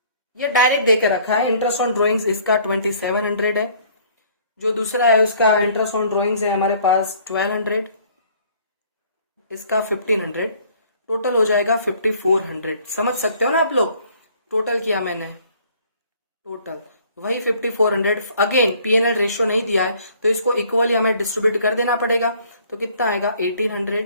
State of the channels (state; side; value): inverted; both; correlation -0.58